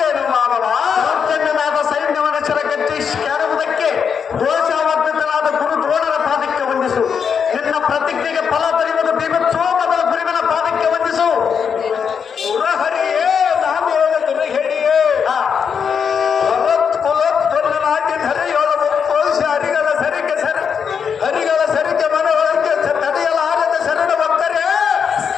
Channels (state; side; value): quieter; right; 6.8 dB